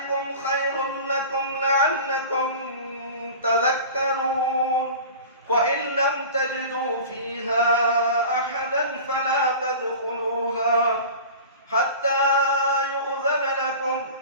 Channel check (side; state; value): both; inverted; correlation -0.36